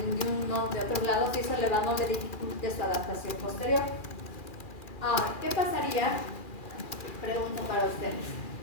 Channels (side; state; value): right; late; 2.4 ms